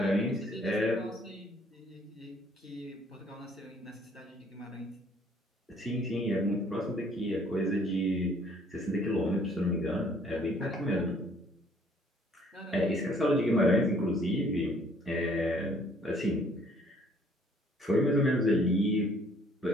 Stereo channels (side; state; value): both; normal; correlation 0.60